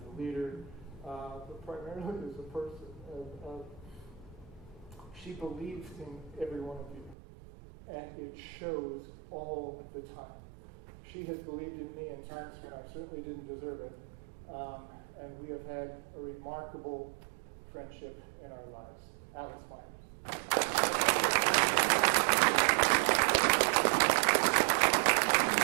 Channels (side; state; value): left; drops out; at 7.2 s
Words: a leader, but primarily as a person. She believes in every one of you, and it shows all the time. She has believed in me in times when I certainly didn't deserve it, and we have had a remarkable friendship in our lives. Alice Myers.